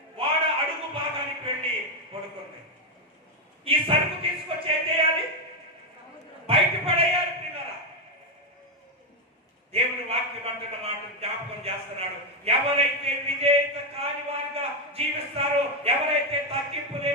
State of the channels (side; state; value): both; normal; correlation 0.05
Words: వాడ అడుగు భాగానికి వెళ్ళి పడుకుంది. ఈ సరుకు తీసుకొచ్చి ఏం చేయాలి? బయట పడేయాలి. పిల్లరా, దేవుని వాక్యం అంటున్న మాట జ్ఞాపకం చేస్తున్నాడు. ఎవరైతే విధేయత కాని వారిగా జీవిస్తారో, ఎవరైతే తగ్గింపు